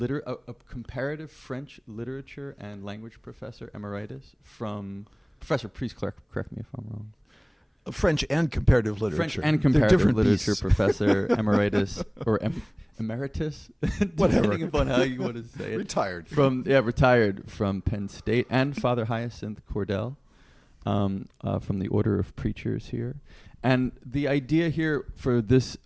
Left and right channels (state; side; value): identical; both; correlation 1.00